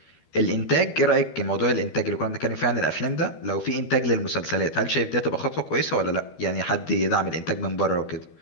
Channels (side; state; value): right; late; 13 ms